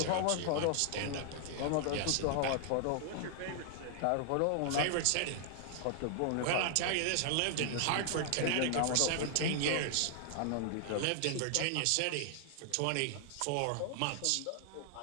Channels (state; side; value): different; both; correlation 0.00